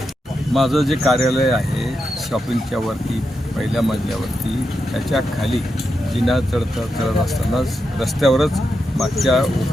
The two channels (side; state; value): both; normal; correlation 0.86